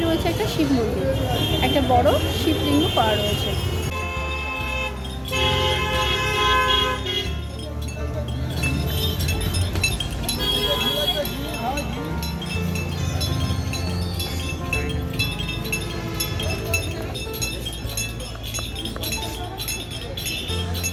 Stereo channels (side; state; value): both; identical; correlation 1.00